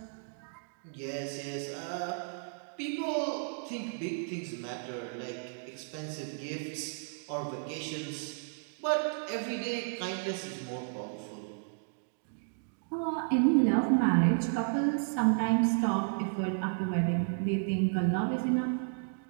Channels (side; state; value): left; silent; digital silence